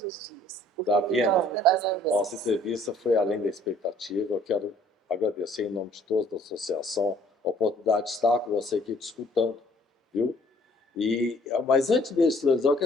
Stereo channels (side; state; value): both; normal; correlation 0.59